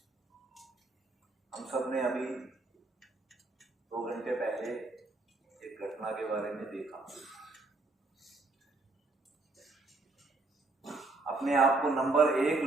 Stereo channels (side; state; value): left; quieter; 3.3 dB